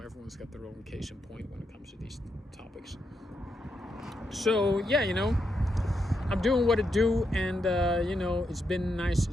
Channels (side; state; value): both; normal; correlation 0.82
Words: everyone's got their own case in point when it comes to these topics. So, yeah, you know, I'm doing what I do, and, you know, it's been nice,